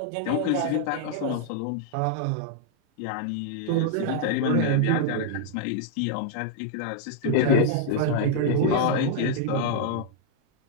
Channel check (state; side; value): different; both; correlation -0.01